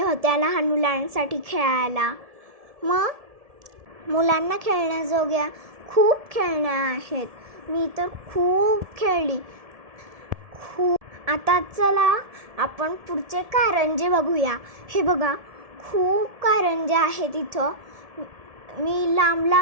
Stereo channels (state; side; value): late; left; 1.7 ms